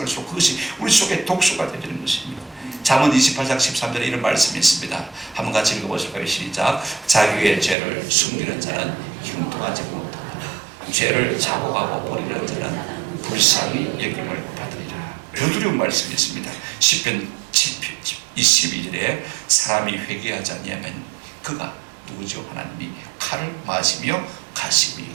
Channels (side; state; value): left; drops out; at 7.8 s